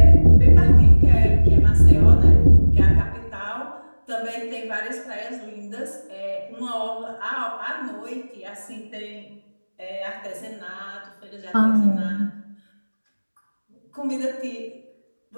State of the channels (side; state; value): both; inverted; correlation -1.00